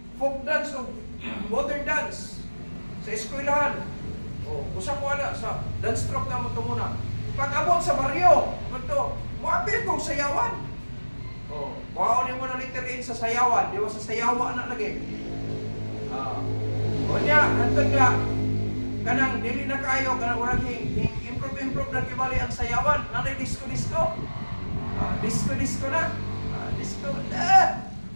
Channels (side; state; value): both; inverted; correlation -1.00